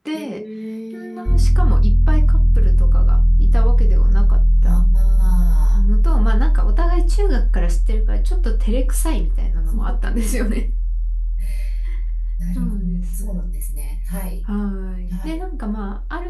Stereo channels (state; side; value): identical; both; correlation 1.00